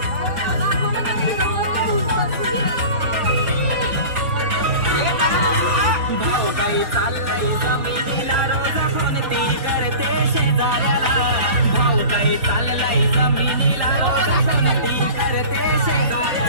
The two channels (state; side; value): late; left; 4.0 ms